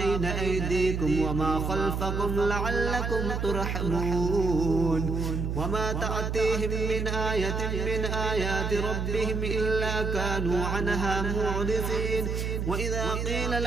أيديكم وما خلفكم لعلكم ترحمون وما تأتيهم من آية من آيات ربهم إلا كانوا عنها معرضين وإذا قيل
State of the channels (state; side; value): noise; right; hum, 1 dB below the sound